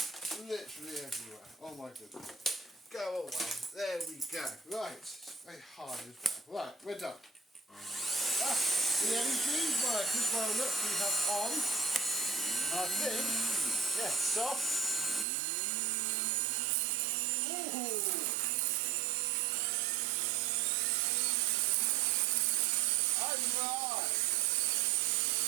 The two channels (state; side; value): drops out; left; at 15.2 s